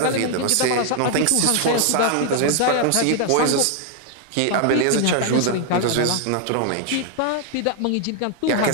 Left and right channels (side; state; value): both; different; correlation 0.00